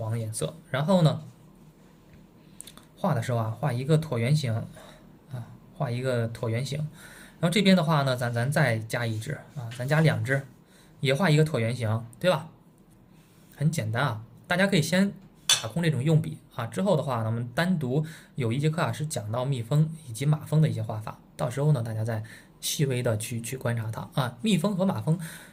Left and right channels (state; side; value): identical; both; correlation 1.00